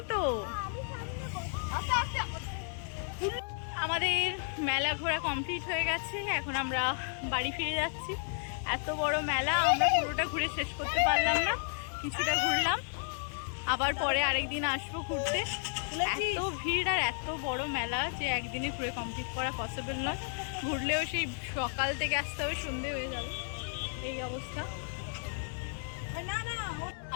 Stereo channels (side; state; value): right; silent; 56 dB below the other